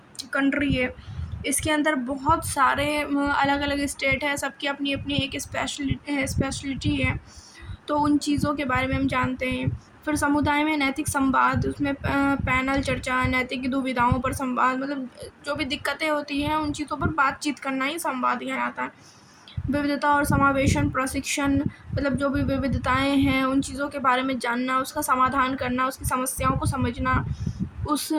कंट्री है। इसके अंदर बहुत सारे अलग अलग स्टेट है, सबकी अपनी अपनी एक स्पेशलिटी है। तो उन चीज़ों के बारे में हम जानते हैं। फिर समुदाय में नैतिक संवाद, उसमें पैनल चर्चा, नैतिक दुविधाओं पर संवाद, मतलब जो भी दिक्कतें होती हैं उन चीज़ों पर बातचीत करना ही संवाद कहलाता है। विविधता और समावेशन प्रशिक्षण, मतलब जो भी विविधताएं हैं उन चीज़ों के बारे में जानना, उसका समाधान करना, उसकी समस्याओं को समझना, उस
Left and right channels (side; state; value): both; identical; correlation 1.00